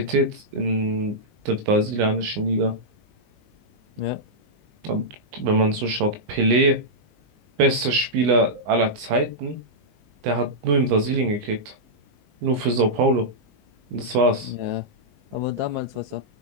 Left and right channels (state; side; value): late; left; 19 ms